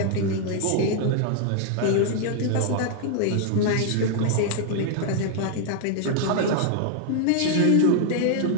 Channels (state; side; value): different; both; correlation 0.00